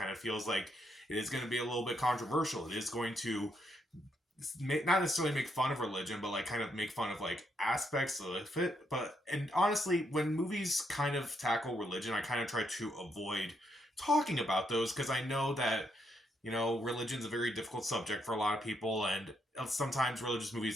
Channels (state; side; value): normal; both; correlation 0.77